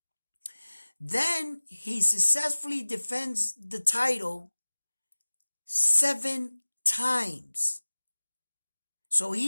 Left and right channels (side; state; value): both; inverted; correlation -1.00